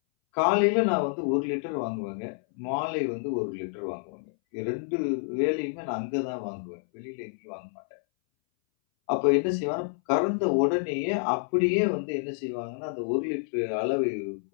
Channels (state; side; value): silent; right; 59 dB below the other